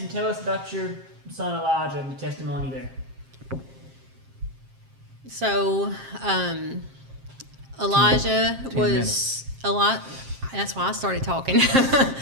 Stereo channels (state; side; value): late; left; 7.5 ms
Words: tell us about your son Elijah and the testimony there. So, Elijah 10 was minutes. a lot. That's why I started talking.